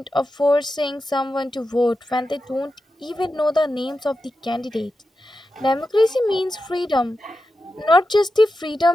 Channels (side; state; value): both; normal; correlation 0.90